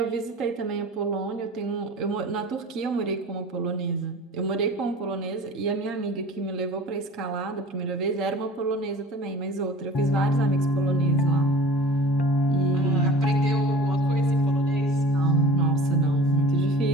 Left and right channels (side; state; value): both; normal; correlation 0.42